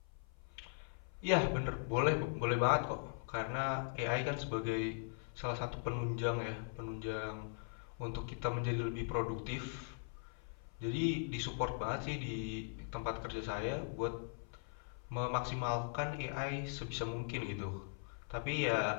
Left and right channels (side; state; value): right; silent; 51 dB below the other